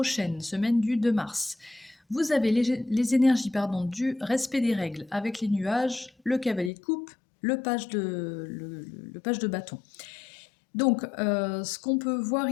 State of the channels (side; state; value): right; drops out; at 6.7 s